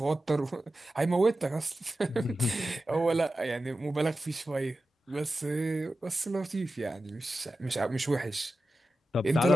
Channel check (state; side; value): normal; both; correlation 0.93